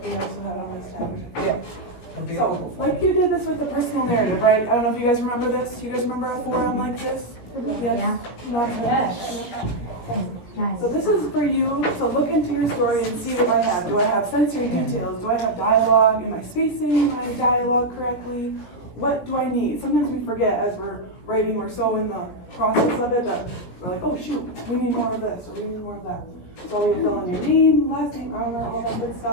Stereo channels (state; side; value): late; right; 17 ms